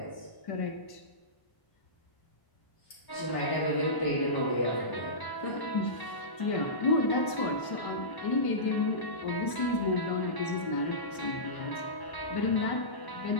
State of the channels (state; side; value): late; right; 1.0 ms